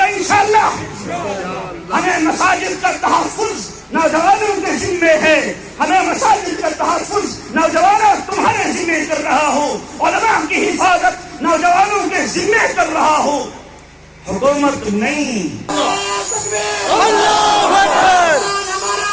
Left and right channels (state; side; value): identical; both; correlation 1.00